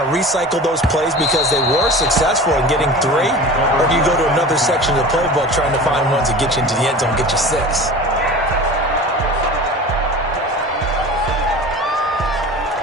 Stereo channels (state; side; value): normal; both; correlation 0.36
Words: to recycle those plays because they were successful in getting 3? Or do you go to another section of the playbook trying to find ones that get you into the end zone, get you 6?